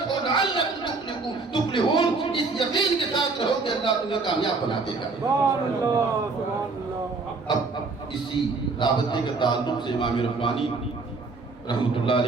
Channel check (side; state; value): left; quieter; 4.0 dB